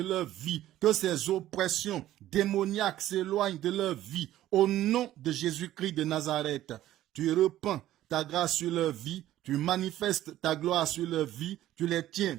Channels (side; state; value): left; quieter; 13.8 dB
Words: leur vie, que ces oppressions démoniaques s'éloignent de leur vie, au nom de Jésus-Christ de Nazareth. Tu repends ta grâce sur leur vie, tu manifestes ta gloire sur leur vie, tu les tiens